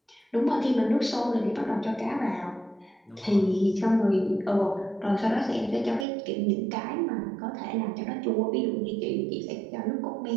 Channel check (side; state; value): left; drops out; at 6.1 s